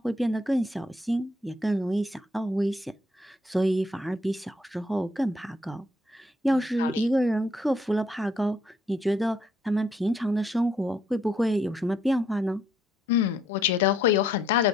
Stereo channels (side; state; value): both; normal; correlation 0.69